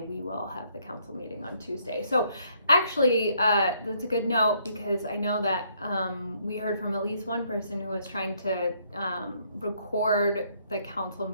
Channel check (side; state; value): both; inverted; correlation -0.69